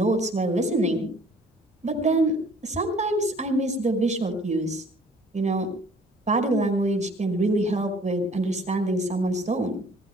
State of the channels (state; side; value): normal; both; correlation 0.54